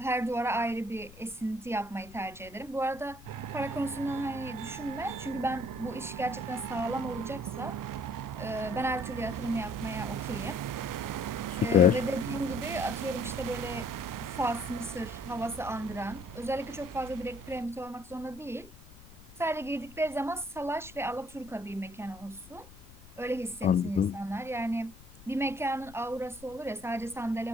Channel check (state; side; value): noise; left; rumble, 20 dB below the sound